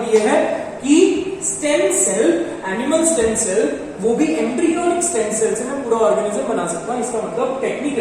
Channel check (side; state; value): both; identical; correlation 1.00